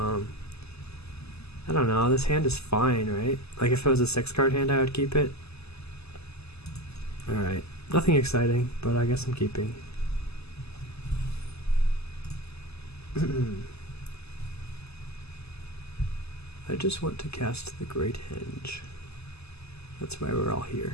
I don't know, this hand is fine, right? Like if it was a 6-card hand I would keep it. Alright, nothing exciting, but I guess I'm keeping. I just want to cast the Great Henge. That's why we're all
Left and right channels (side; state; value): right; late; 0.79 ms